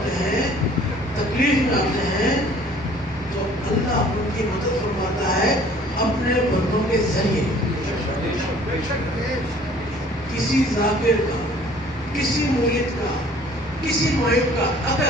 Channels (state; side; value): normal; both; correlation 0.53